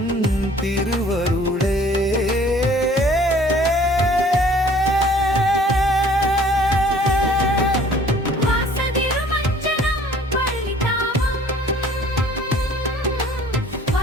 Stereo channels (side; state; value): both; normal; correlation 0.54